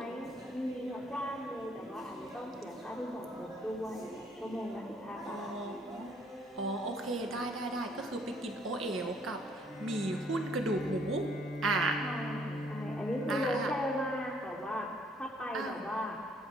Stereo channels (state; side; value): normal; both; correlation 0.65